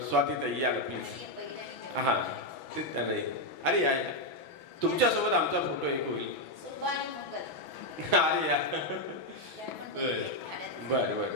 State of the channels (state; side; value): late; right; 6.1 ms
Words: स्वातीताई या प्लीज. हां, ते नाही. अरे या, तुमच्यासोबत आमचा फोटो एक होईल. अरे या, बरं